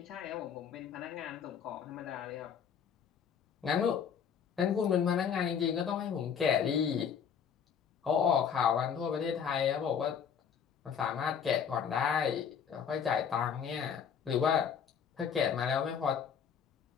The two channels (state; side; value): quieter; right; 7.5 dB